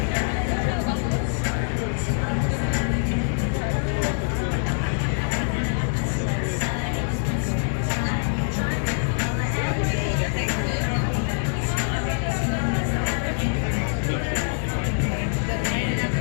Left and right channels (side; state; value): right; silent; digital silence